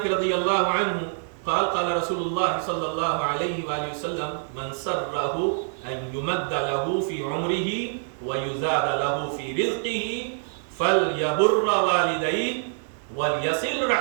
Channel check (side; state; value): left; silent; digital silence